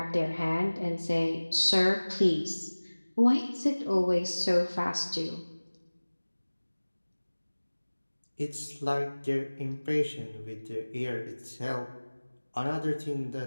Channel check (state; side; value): inverted; both; correlation -1.00